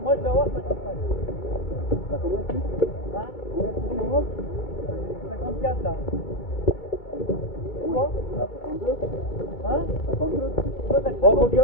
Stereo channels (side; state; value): right; late; 2.3 ms